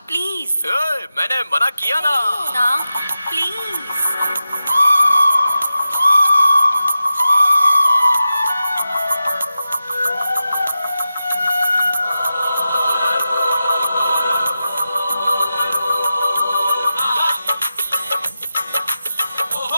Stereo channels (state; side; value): inverted; both; correlation -0.92